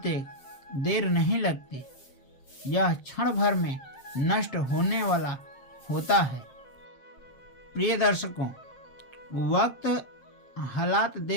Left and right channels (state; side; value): late; right; 7.3 ms